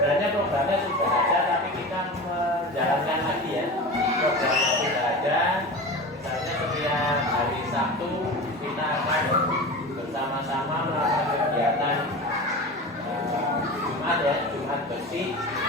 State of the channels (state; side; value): normal; both; correlation 0.30